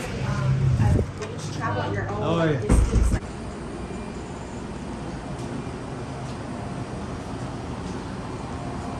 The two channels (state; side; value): identical; both; correlation 1.00